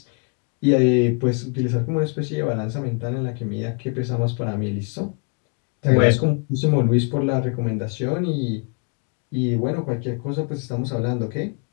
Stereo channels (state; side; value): quieter; right; 37.8 dB